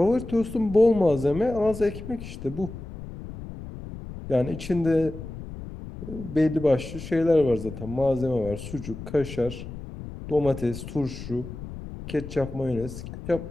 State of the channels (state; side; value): noise; left; rumble, 11 dB below the sound